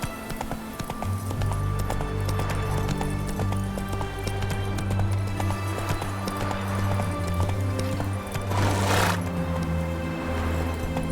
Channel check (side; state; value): both; identical; correlation 1.00